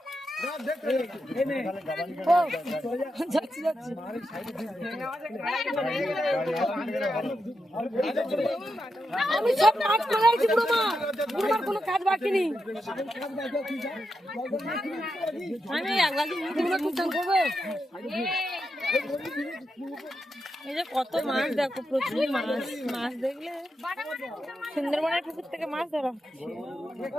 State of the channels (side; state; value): both; normal; correlation 0.86